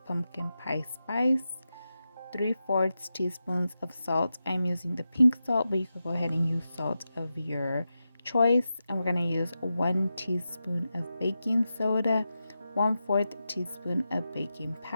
pumpkin pie spice, 3/4 teaspoons of salt. I'm using the pink salt, but you could go ahead and use salt of your choice. And we're going to use 1 teaspoon of baking soda, 1/4 teaspoon of baking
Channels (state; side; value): inverted; both; correlation -0.90